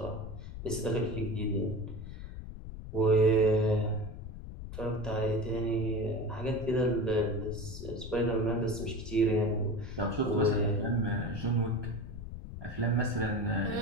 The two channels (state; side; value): noise; left; rumble, 10 dB below the sound